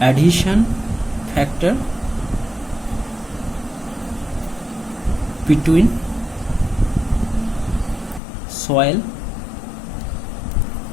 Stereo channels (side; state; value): right; drops out; at 8.2 s